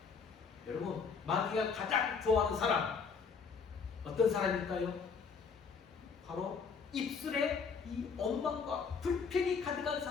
여러분, 마귀가 가장 좋아하는 사람 어떤 사람일까요? 바로 입술에 이 원망과 불평이 가득한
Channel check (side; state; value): right; quieter; 5.6 dB